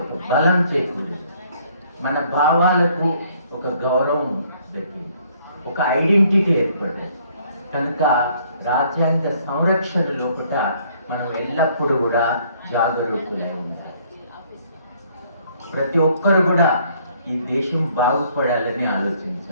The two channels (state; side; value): inverted; both; correlation -0.63